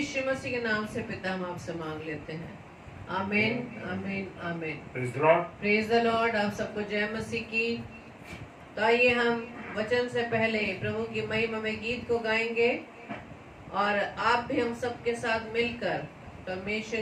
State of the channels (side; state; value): both; identical; correlation 1.00